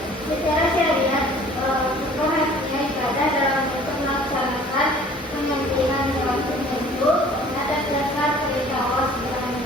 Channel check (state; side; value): normal; both; correlation 0.51